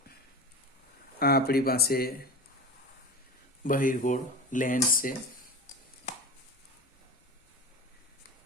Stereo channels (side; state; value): both; normal; correlation 0.29